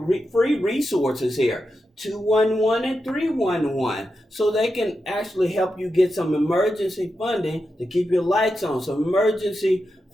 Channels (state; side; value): normal; both; correlation 0.88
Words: free resources here. 211 and 311, so they can actually help you get some emergency funding to keep your lights on, some emergency